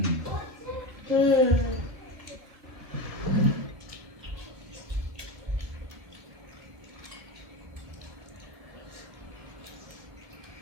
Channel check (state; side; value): late; left; 1.5 ms